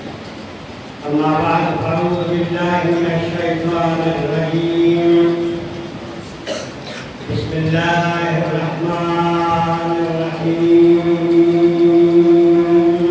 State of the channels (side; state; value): both; identical; correlation 1.00